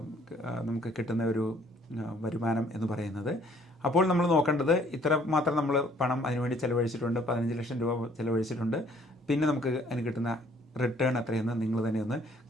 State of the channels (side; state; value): both; normal; correlation 0.61